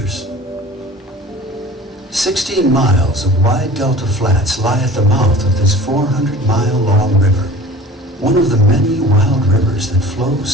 16 miles of wide delta flats lie at the mouth of this 400-mile-long river, one of the many wild rivers that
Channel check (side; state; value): both; normal; correlation 0.43